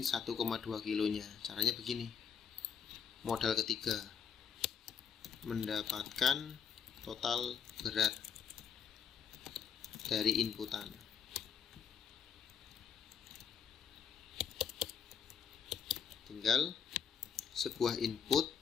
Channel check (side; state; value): right; quieter; 7.1 dB